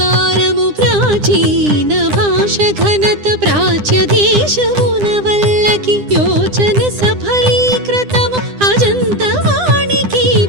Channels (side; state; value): left; late; 9.9 ms